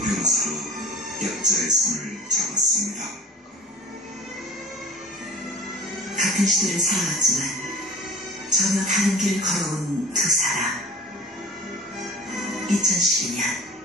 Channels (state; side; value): normal; both; correlation 0.43